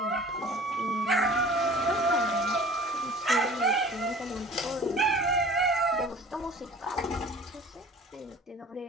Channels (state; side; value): normal; both; correlation 0.44